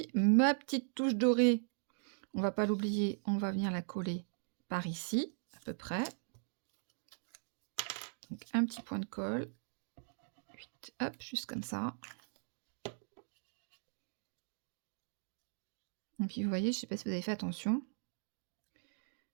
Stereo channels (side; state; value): left; silent; digital silence